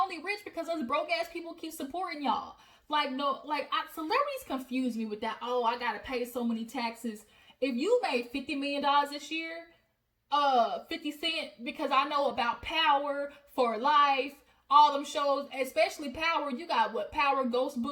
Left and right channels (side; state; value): both; identical; correlation 1.00